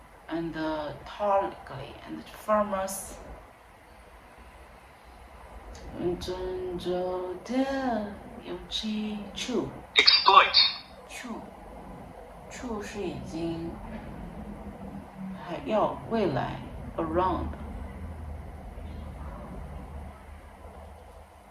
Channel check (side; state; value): both; identical; correlation 1.00